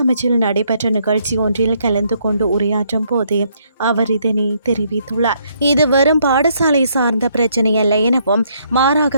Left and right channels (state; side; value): inverted; both; correlation -0.71